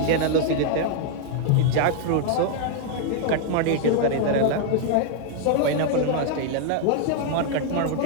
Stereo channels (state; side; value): different; both; correlation 0.00